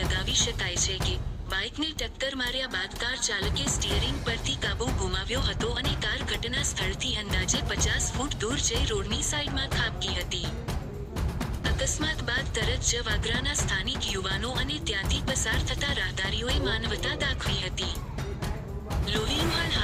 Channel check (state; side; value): identical; both; correlation 1.00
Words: શકાય છે કે બાઇકને ટક્કર માર્યા બાદ કાર ચાલકે સ્ટીયરિંગ પરથી કાબુ ગુમાવ્યો હતો અને કાર ઘટના સ્થળથી અંદાજે 50 ફૂટ દૂર જઈ રોડની સાઈડમાં ખાબકી હતી. અકસ્માત બાદ તરત જ વાગરાના સ્થાનિક યુવાનો અને ત્યાંથી પસાર થતા રાહદારીઓએ માનવતા દાખવી હતી. લોહીલુહાણ